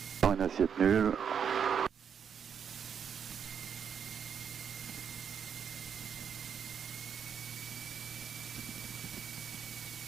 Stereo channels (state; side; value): quieter; left; 7.5 dB